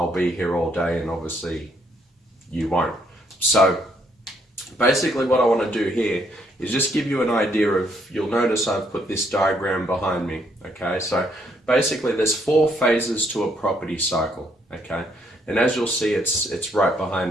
be here all day, and obviously you won't. So basically what I want to do here is just give you an idea of, you'll notice I've put this diagram behind me. Okay, so basically there's 4 phases to a property cycle. Okay, and as you'll see, it's right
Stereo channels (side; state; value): both; normal; correlation 0.71